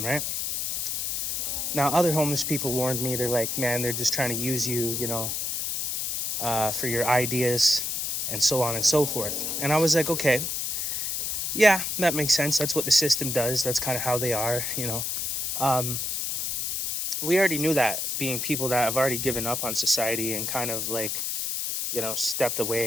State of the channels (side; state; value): left; noise; hiss, 1 dB below the sound